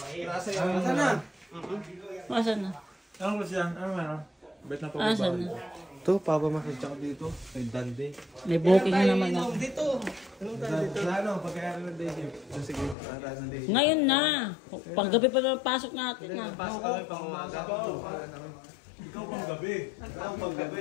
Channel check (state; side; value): drops out; right; at 13.0 s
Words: Nasa yung... Nasaan na? Asan na? Ano ba siya? Ano meron? Bet na Asan na? Ito, papamakit ako dito. May dande. May booking na naman ako. Dito. Anong tayo dito? Ano? Pagkayari ng day shift. Sige, para ng day shift. Ngayon na. Panggabi pa na pasok natin na. Pasok kami pang umaga. Ikaw pang gabi. Ikaw pang